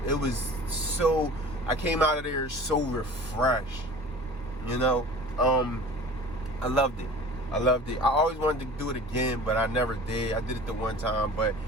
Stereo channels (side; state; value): both; normal; correlation 0.42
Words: so, I came out of there so refreshed, you know. I loved it. I always wanted to do it again, but I never did. I did it the one time, but